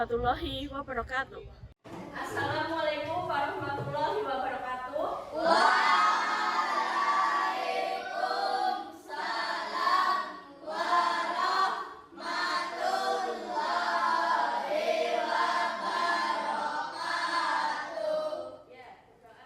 wabarakatuh. Assalamualaikum warahmatullahi wabarakatuh.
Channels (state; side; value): identical; both; correlation 1.00